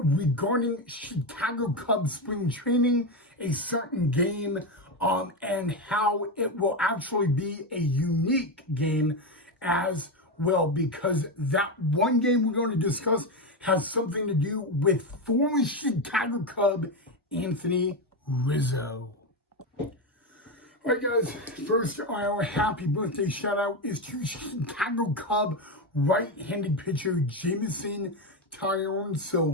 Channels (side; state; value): both; normal; correlation 0.13